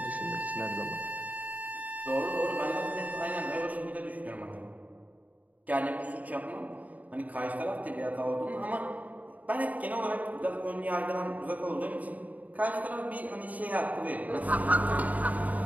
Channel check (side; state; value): left; late; 0.073 ms